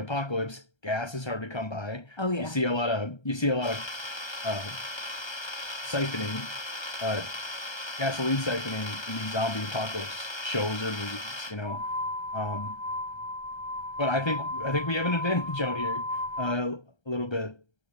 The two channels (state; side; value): late; right; 1.3 ms